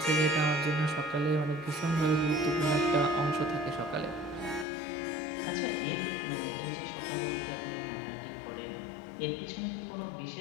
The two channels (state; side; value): drops out; right; at 4.7 s